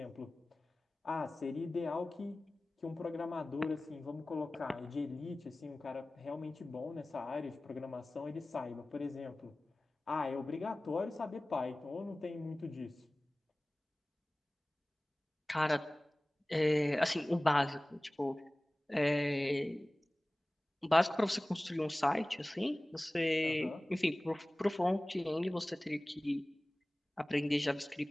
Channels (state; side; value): normal; both; correlation 0.98